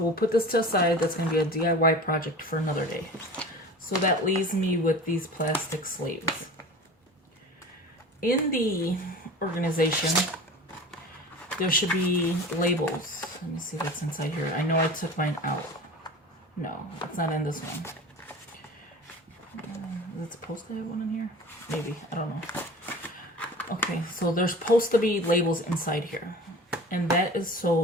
we'll put this to the side. That's going to be a DIY project for another day. So that leaves me with these plastic sleeves. In the organization, there should be labels. Let me see what's inside here. I know I took mine out. No, it's not in this one. Is it supposed to have one in here? Maybe, I don't know. Okay, so there's supposed to be labels inside here. And that is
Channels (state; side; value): normal; both; correlation 0.37